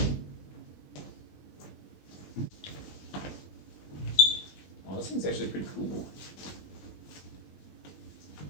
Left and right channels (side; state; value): right; late; 21 ms